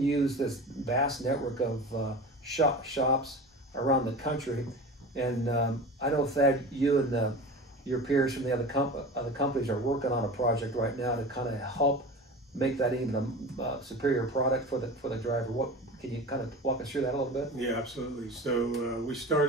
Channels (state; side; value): normal; both; correlation 0.33